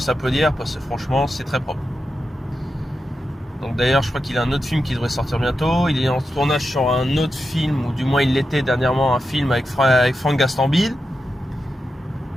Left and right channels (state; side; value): normal; both; correlation 0.89